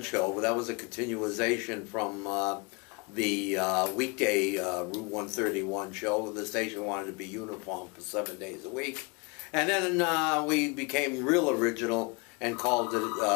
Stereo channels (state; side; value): quieter; right; 29.8 dB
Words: show. That was a continuation from the weekday Route 131 show. The station wanted to be uniform for 7 days a week. And then we became real original and called it